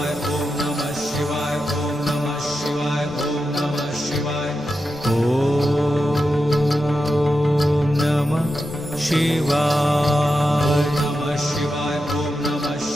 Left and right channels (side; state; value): both; normal; correlation 0.89